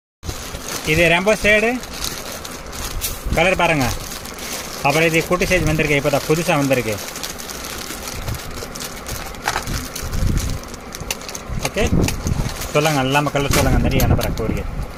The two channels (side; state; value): both; identical; correlation 1.00